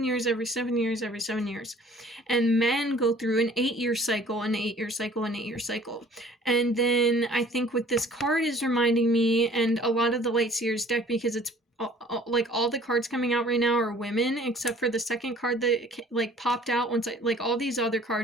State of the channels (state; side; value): normal; both; correlation 0.52